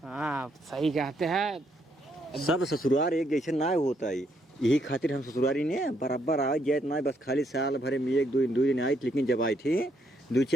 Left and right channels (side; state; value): both; normal; correlation 0.74